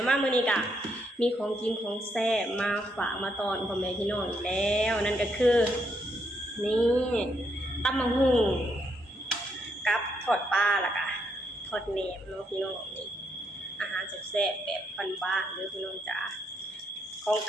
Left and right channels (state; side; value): normal; both; correlation 0.77